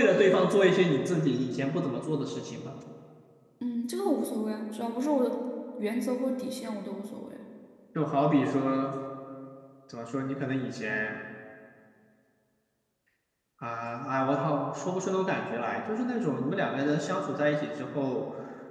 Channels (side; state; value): both; identical; correlation 1.00